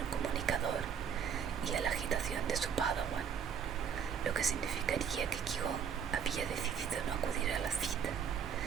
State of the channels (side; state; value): left; quieter; 7.5 dB